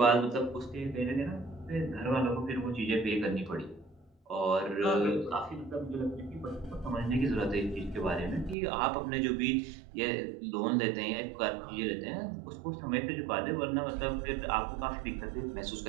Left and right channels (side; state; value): left; drops out; at 8.6 s